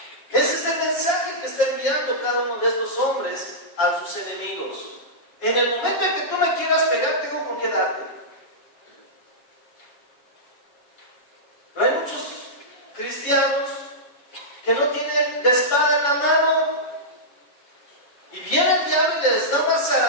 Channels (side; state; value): right; late; 7.1 ms